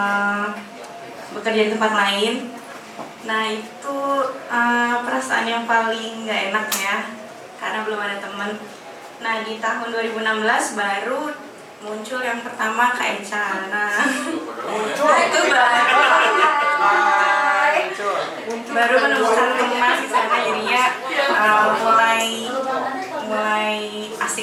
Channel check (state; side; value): identical; both; correlation 1.00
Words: bekerja di tempat lain. Nah, itu perasaan yang paling gak enak ya, karena belum ada teman. Nah, di tahun 2016 baru muncul yang pertama Kak Eca. Nah, itu baru menemukan teman di sana, jadinya mulai